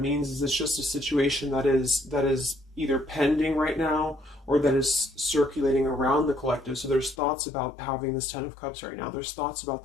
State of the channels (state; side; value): drops out; right; at 7.2 s